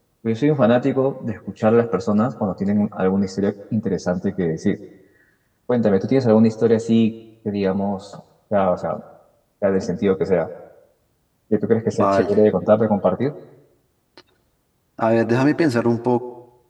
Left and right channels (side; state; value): both; identical; correlation 1.00